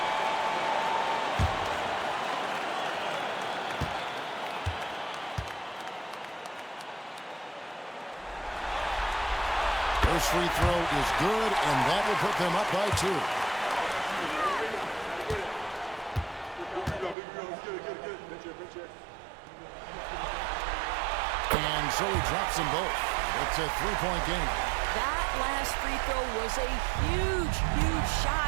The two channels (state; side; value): drops out; left; at 17.2 s